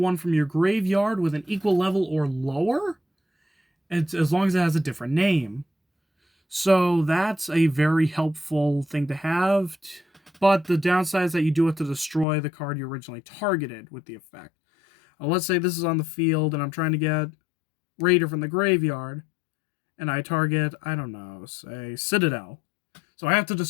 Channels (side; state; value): right; drops out; at 12.2 s